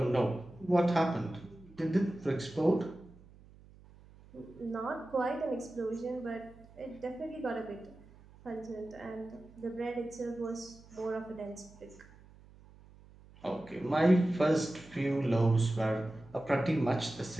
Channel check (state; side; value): noise; right; hum, 23 dB below the sound